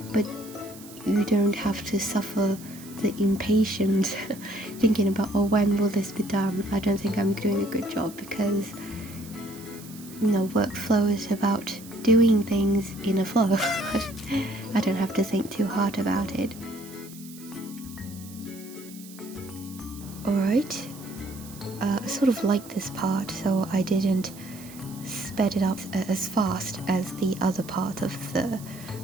but you don't have to suffer the impatience thinking about, when will this be done? I don't think I'm doing a good job, because workflow is about doing things in a flow. I don't have to think too hard about it. Alright, I sort of like this part, so I didn't sped it up as fast as the other part of the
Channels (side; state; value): right; noise; hiss, 18 dB below the sound